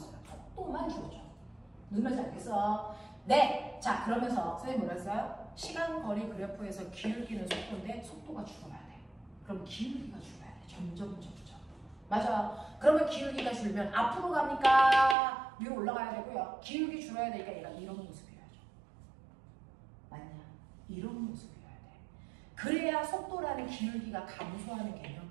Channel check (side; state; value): left; drops out; at 15.2 s